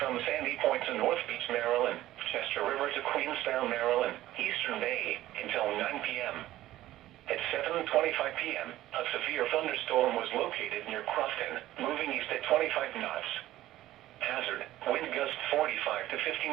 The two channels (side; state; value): left; quieter; 15.0 dB